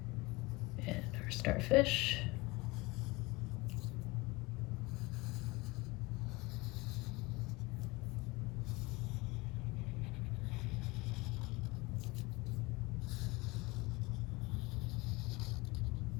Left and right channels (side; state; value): right; quieter; 23.1 dB